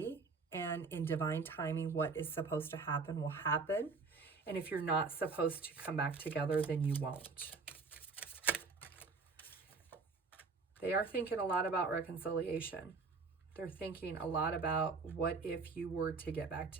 And in divine timing, what is supposed to happen will happen. And if you're not supposed to come back together, then you won't. They are thinking a lot about reconciliation. They're thinking a lot about what if you were to get back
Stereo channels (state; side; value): quieter; left; 4.4 dB